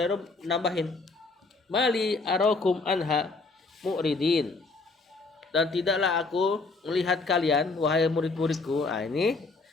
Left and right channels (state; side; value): quieter; right; 3.8 dB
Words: nambahin, mali arakum anha mu'ridin. Dan tidaklah aku melihat kalian wahai murid-muridku. Ini